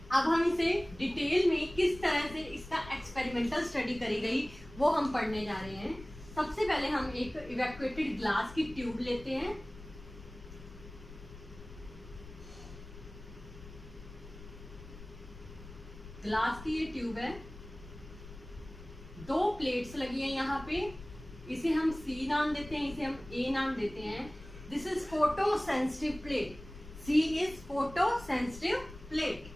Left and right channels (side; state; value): left; noise; rumble, 16 dB below the sound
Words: अब हम इसे डिटेल में किस तरह से इसका एक्सपेरिमेंटल स्टडी करी गई वो हम पढ़ने जा रहे हैं। सबसे पहले हम एक इवैक्यूएटेड ग्लास की ट्यूब लेते हैं। ग्लास की ये ट्यूब है, 2 प्लेट्स लगी हैं यहाँ पे, इसे हम C नाम देते हैं, इसे हम A नाम देते हैं। This is photo sensitive plate, C is photo sensitive plate.